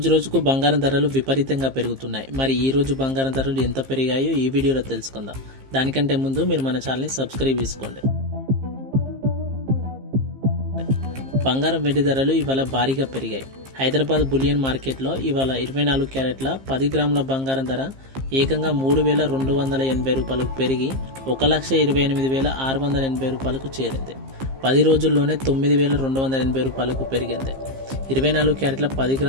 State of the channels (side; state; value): left; late; 15 ms